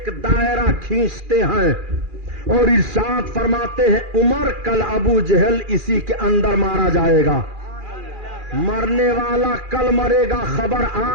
دائرہ کھینچتے ہیں اور ارشاد فرماتے ہیں عمر کل ابو جہل اسی کے اندر مارا جائے گا. مرنے والا کل مرے گا, خبر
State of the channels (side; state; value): left; late; 2.4 ms